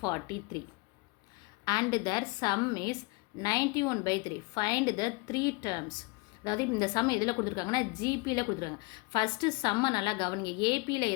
and their sum is 91/3. Find the three terms. அதாவது இந்த some எதில் கொடுத்துருக்காங்கன்னா ஜிபியில் கொடுத்துருக்காங்க. First சம்மை நல்லா கவனிங்க. ஏபியில்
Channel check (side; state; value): right; quieter; 26.1 dB